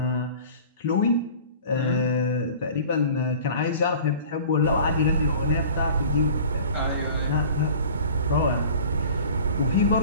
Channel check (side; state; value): both; inverted; correlation -0.43